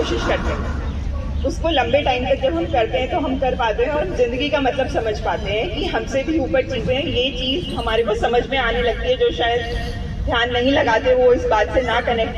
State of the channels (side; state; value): both; identical; correlation 1.00